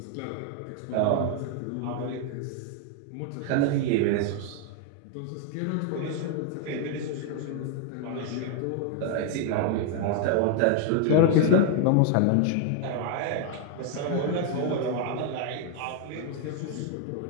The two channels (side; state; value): both; different; correlation 0.00